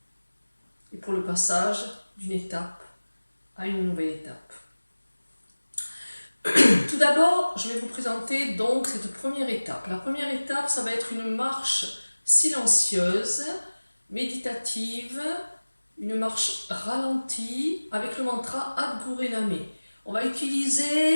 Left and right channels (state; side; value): inverted; both; correlation -1.00